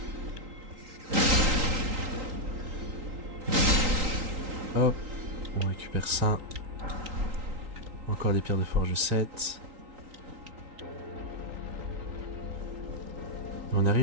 Hop. On récupère ça. Encore des pierres de forge 7. On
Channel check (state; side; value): late; left; 3.8 ms